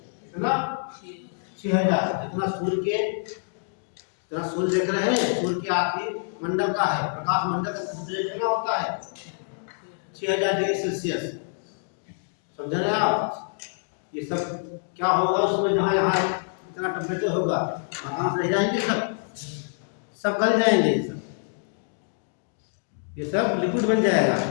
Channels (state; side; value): silent; right; digital silence